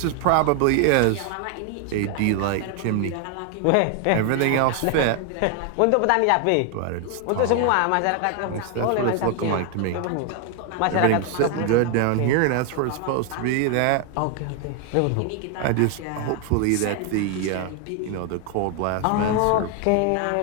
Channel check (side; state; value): both; different; correlation 0.00